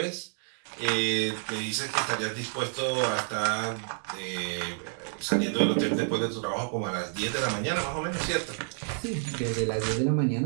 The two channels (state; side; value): silent; left; 58 dB below the other